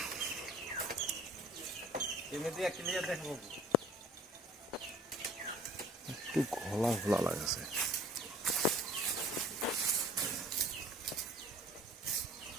এমনিতে ক্লিয়ার দেখবো। একটু ঘোলা ঘোলা লাগছে।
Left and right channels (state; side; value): normal; both; correlation 0.49